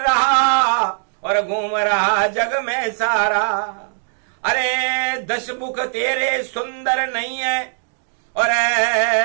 और घूम रहा जग में सारा। अरे 10 मुख तेरे सुंदर नहीं है,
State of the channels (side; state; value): left; silent; digital silence